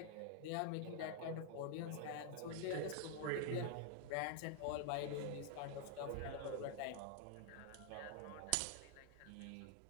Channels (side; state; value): both; different; correlation 0.00